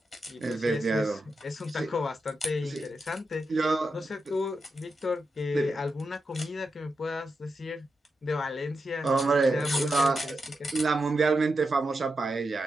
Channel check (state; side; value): normal; both; correlation 0.87